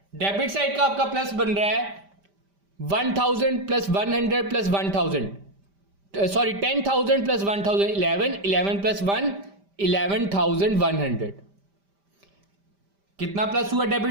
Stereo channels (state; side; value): late; left; 5.1 ms